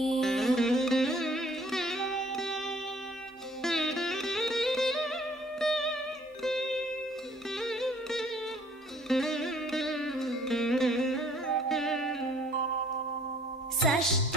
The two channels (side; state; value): both; normal; correlation 0.58